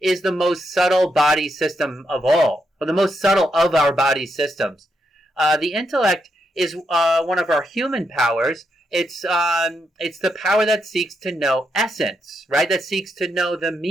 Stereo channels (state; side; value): normal; both; correlation 0.81